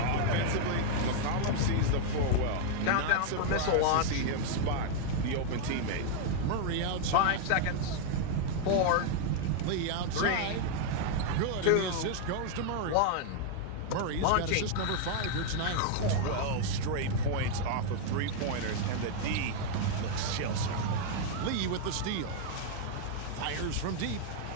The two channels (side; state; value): both; different; correlation -0.01